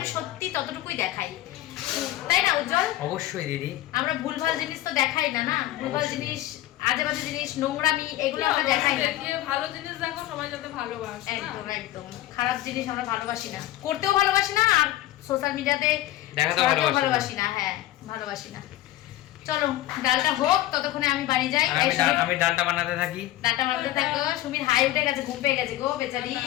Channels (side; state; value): right; quieter; 15.0 dB